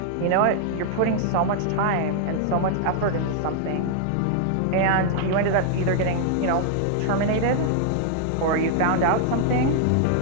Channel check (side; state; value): both; different; correlation 0.00